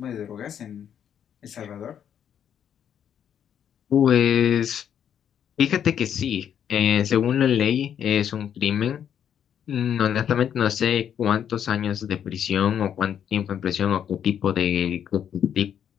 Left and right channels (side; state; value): right; quieter; 9.0 dB